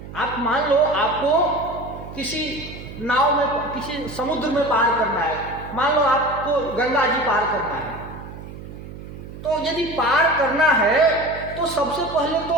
आप मान लो आपको किसी नाव में, किसी समुद्र में पार करना है, मान लो आपको गंगा जी पार करना है, तो यदि पार करना है तो सबसे पहले तो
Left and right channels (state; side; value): noise; right; hum, 13 dB below the sound